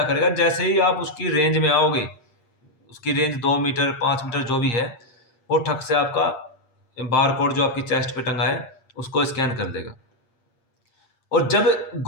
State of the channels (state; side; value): late; right; 8.6 ms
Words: करेगा, जैसे ही आप उसकी रेंज में आओगे, उसकी रेंज 2 मीटर 5 मीटर जो भी है, वो ठक से आपका बार कोड जो आपकी चेस्ट पे टंगा है उसको स्कैन कर देगा। और जब